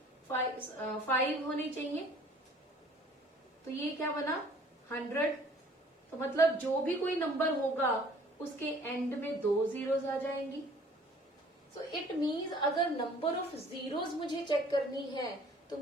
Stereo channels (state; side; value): normal; both; correlation 0.53